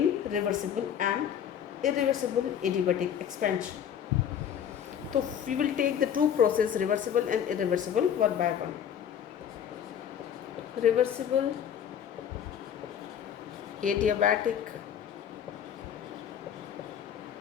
reversible and irreversible adiabatic expansion. So we will take the two processes, reversible and irreversible, one by one. Reversible adiabatic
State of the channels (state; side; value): quieter; right; 8.9 dB